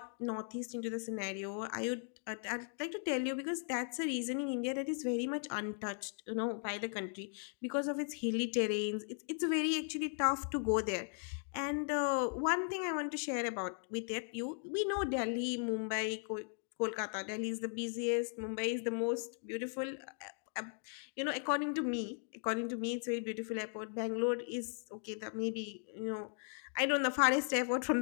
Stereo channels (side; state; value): right; silent; 53 dB below the other